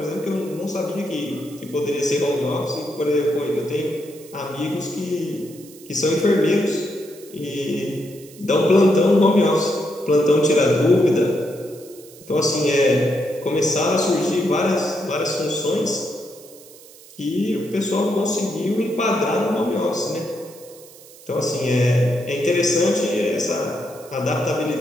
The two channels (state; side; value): noise; right; hiss, 21 dB below the sound